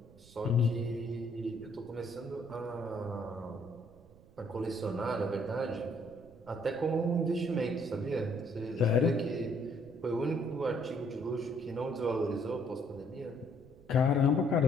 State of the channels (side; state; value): right; noise; rumble, 24 dB below the sound